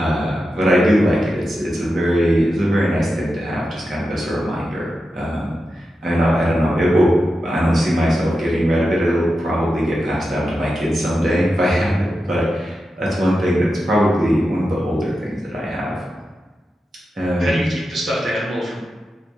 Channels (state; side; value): normal; both; correlation 0.90